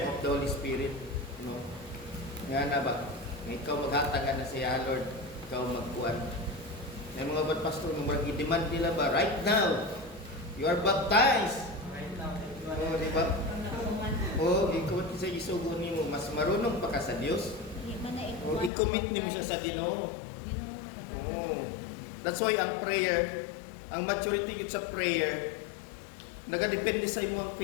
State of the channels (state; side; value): drops out; right; at 18.7 s